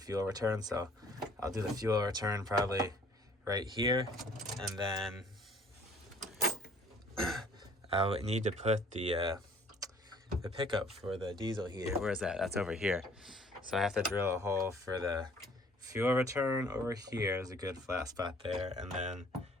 return, so I'll do the fuel return probably right here, and then I would need to put the pickup for the diesel heater. Where is that? That's over here. So I have to drill a hole for the fuel return over here. There's a good flat spot there, and then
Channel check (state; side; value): normal; both; correlation 0.58